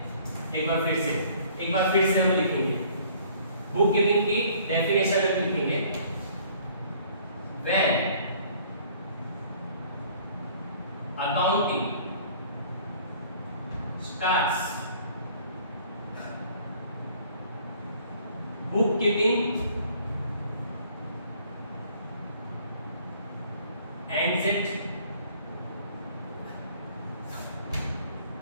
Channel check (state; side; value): inverted; both; correlation -0.56